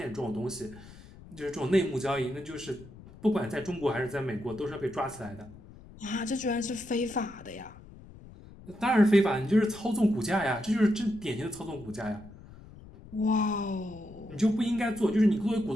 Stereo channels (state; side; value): noise; left; rumble, 19 dB below the sound